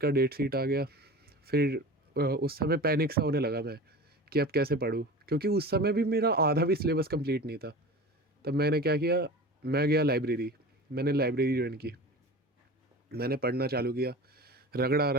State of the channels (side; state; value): both; normal; correlation 0.35